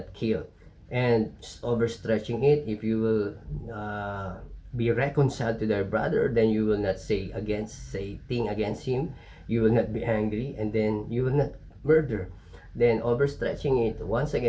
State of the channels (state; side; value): identical; both; correlation 1.00